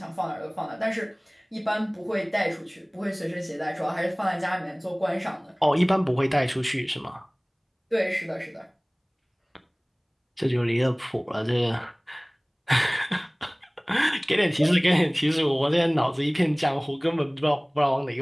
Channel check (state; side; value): identical; both; correlation 1.00